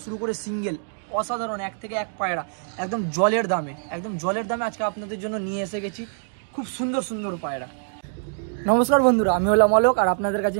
শুরু করে সিঙ্গেল অসাধারণ এক থেকে এক পায়রা একদম জলের দামে, আজকে আপনাদের জন্য নিয়ে এসে গেছি খুব সুন্দর সুন্দর পায়রা। নমস্কার বন্ধুরা, আমি হলাম অলোক আর আপনাদের কাছে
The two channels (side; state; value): left; silent; digital silence